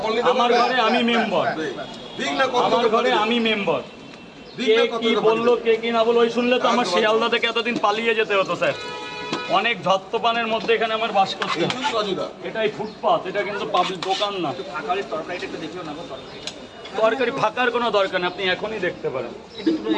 নিতে আমার ঘরে আমি মেম্বার, ঠিক না? আমার ঘরে আমি মেম্বার। কে কি বললো, কে কি না বললো, ওই শুনলে তো আমার শিয়ালদা থেকে এতদিন পালিয়ে যেতে হতো স্যার। অনেক ধত্তপানের মধ্যে এখানে আমার বাস করতে হয়। এটাই ফুটপাথ, এটা কিন্তু পাবলিক দোকান না। তরকারি ফাঁকার কোনো দরকার নেই, আপনি এখনই দেখতে পারেন।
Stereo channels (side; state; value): both; identical; correlation 1.00